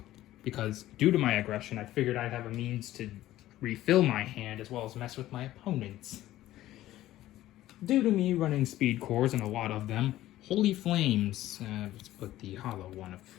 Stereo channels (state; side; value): quieter; right; 14.7 dB